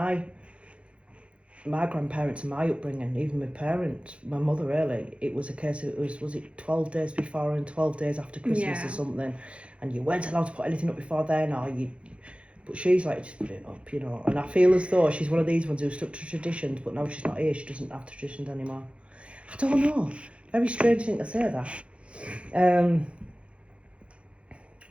grandparents and my upbringing, even my parents, my mother really, it was a case of, was it 12 days before and 12 days after Christmas or something, and you weren't allowed to put anything up before then, but she's like, just put it up, you know. And I feel as though she's one of these ones who stuck to traditions, but now she's not here, she doesn't have traditions anymore. I don't know, very strange thing to say that.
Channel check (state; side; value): late; left; 0.060 ms